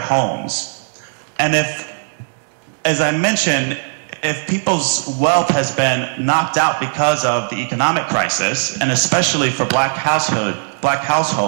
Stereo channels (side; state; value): left; silent; digital silence